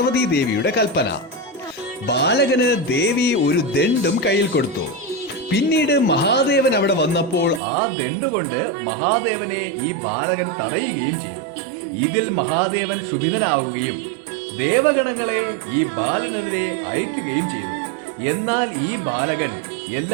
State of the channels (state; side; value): drops out; left; at 7.6 s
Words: ദേവിയുടെ കൽപ്പന. ബാലകന് ദേവി ഒരു ദണ്ഡും കയ്യിൽ കൊടുത്തു. പിന്നീട് മഹാദേവൻ അവിടെ വന്നപ്പോൾ ആ ദണ്ഡുകൊണ്ട് മഹാദേവനെ ഈ ബാലകൻ തടയുകയും ചെയ്തു. ഇതിൽ മഹാദേവൻ ക്ഷുഭിതനാവുകയും ദേവഗണങ്ങളെ ഈ ബാലനെതിരെ അയക്കുകയും ചെയ്തു. എന്നാൽ ഈ ബാലകൻ